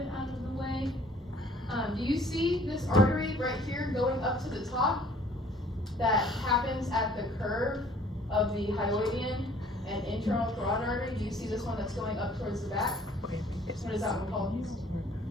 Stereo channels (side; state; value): both; normal; correlation 0.56